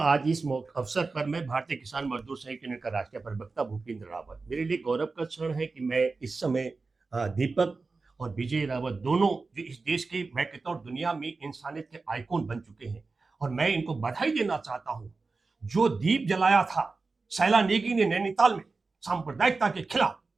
इस अवसर पर मैं भारतीय किसान मजदूर संघ यूनियन का राष्ट्रीय प्रवक्ता भूपेंद्र रावत, मेरे लिए गौरव का क्षण है कि मैं इस समय दीपक और विजय रावत दोनों, जो इस देश के, मैं कहता हूँ दुनिया में इंसानियत के आइकॉन बन चुके हैं, और मैं इनको बधाई देना चाहता हूँ। जो दीप जलाया था शैला नेगी ने नैनीताल में सांप्रदायिकता के खिलाफ,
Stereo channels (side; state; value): left; quieter; 4.0 dB